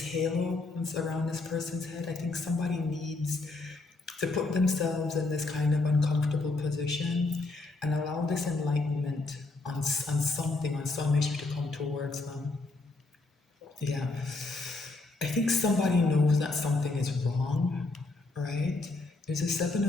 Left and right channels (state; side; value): quieter; right; 3.3 dB